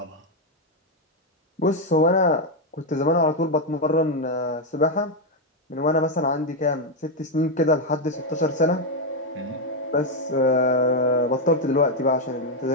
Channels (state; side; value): normal; both; correlation 0.03